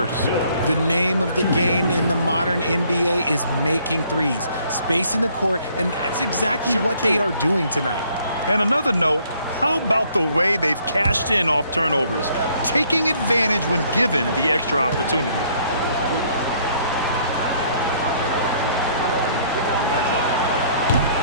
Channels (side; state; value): both; inverted; correlation -0.63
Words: The name of the game in the modern NBA is making threes, spacing the court, and that's exactly what they are doing tonight. And another note, how about the way they've cashed in off turnovers, taking advantage when given the extra opportunity.